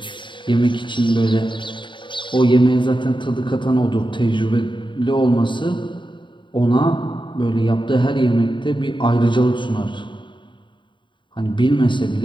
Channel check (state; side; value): late; right; 0.23 ms